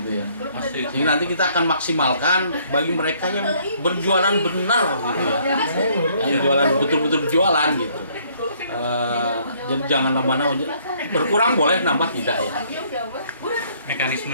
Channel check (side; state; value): both; inverted; correlation -0.64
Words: ya. Jadi nanti kita akan maksimalkan bagi mereka yang berjualan benar gitu ya, yang jualan betul-betul berjualan gitu. Jadi jangan nambah-nambah, berkurang boleh, nambah tidak ya.